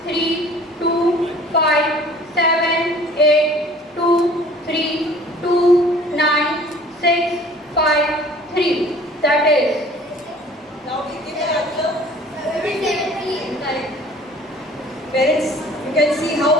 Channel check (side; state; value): both; normal; correlation 0.50